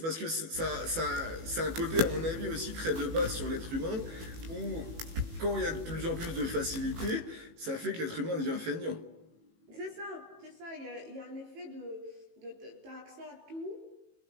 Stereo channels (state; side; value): late; left; 18 ms